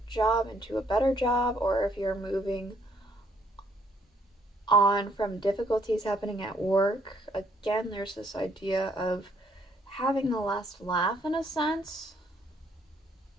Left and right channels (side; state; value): both; normal; correlation 0.68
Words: job into a better job, or if you're moving on from difficulties happening at work. Again, there's this idea of having the last laugh in a sense.